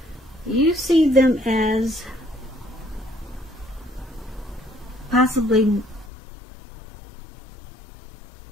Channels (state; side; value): drops out; right; at 6.1 s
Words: You see them as possibly